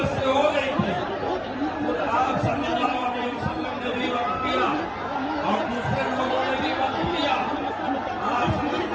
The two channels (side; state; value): both; identical; correlation 1.00